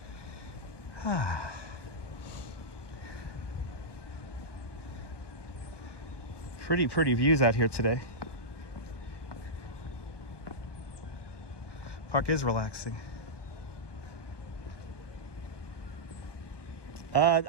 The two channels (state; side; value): late; right; 1.2 ms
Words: Pretty views out here today. Park is relaxing.